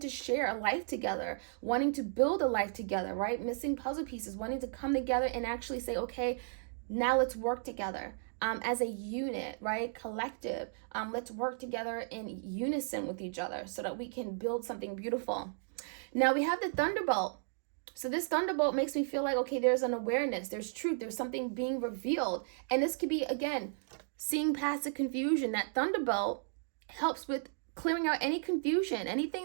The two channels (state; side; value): silent; left; digital silence